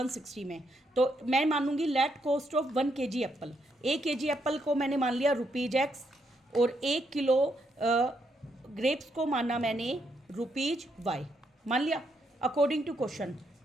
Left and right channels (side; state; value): both; normal; correlation 0.77